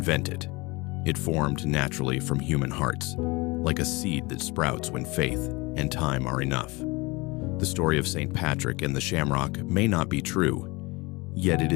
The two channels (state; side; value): quieter; right; 24.6 dB